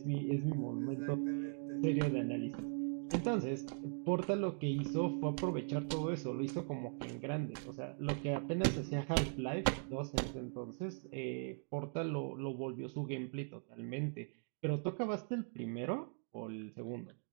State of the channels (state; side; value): silent; left; 51 dB below the other